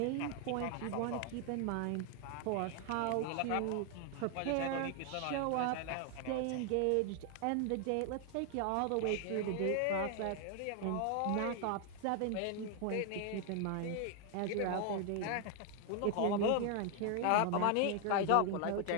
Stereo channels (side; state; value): both; different; correlation 0.00